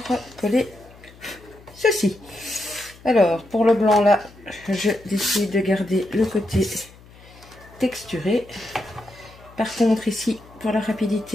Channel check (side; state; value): left; noise; hum, 23 dB below the sound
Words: coller ceci. Alors, pour le blanc là, je décide de garder le côté texturé. Par contre, ici, pour la